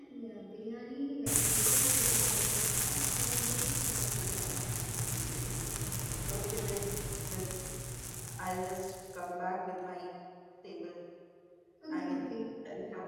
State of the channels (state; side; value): identical; both; correlation 1.00